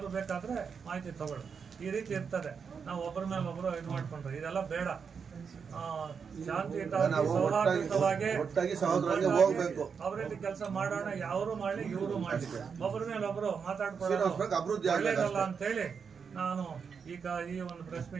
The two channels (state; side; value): quieter; left; 6.2 dB